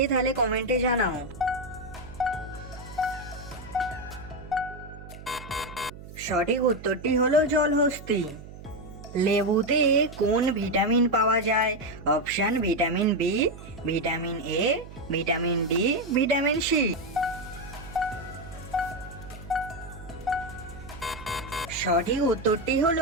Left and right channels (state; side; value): noise; right; hum, 15 dB below the sound